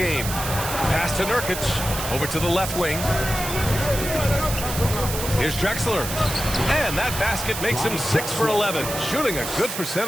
Pass to Nurkic. Over to the left wing. Here's Drexler. And that basket makes him 6 for 11. Shooting a good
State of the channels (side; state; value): right; noise; hiss, 6 dB below the sound